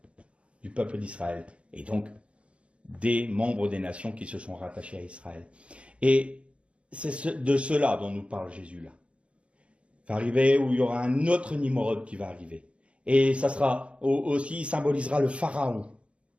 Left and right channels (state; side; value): late; left; 0.060 ms